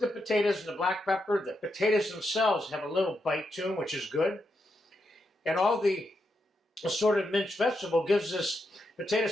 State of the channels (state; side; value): normal; both; correlation 0.84